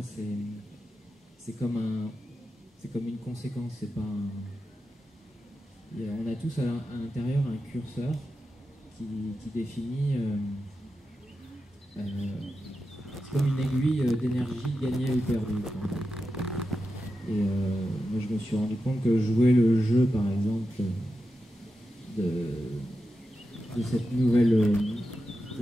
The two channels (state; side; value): normal; both; correlation 0.90